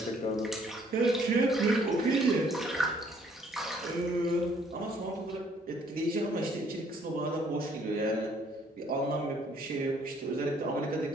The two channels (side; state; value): both; normal; correlation 0.63